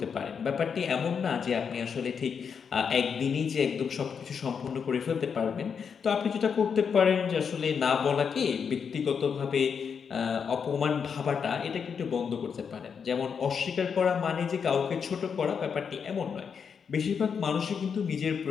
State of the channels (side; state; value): right; quieter; 6.6 dB